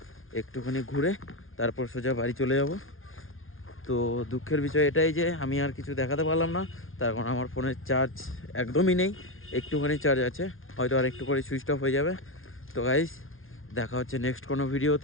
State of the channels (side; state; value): right; late; 0.60 ms